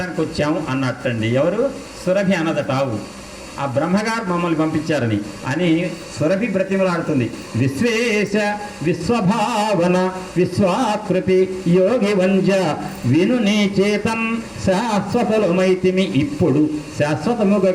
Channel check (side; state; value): both; identical; correlation 1.00